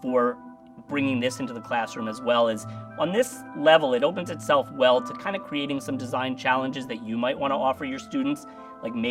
for bringing this into the classroom as well is on this level, it opens itself well to kind of creating some design challenges that you might want to offer your students. Like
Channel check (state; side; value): identical; both; correlation 1.00